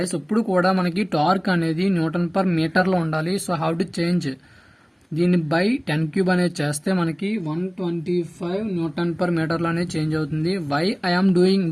ఇప్పుడు కూడా మనకి టార్క్ అనేది Newton per metre లో ఉండాలి. సో హౌ టు చేంజ్ దీన్ని బై 10 క్యూబ్ అనేది చేస్తే మనకి 125 న్యూటన్ పర్ మీటర్ లో అనేది చేంజ్ అవుతుంది. Why I'm doing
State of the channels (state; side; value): identical; both; correlation 1.00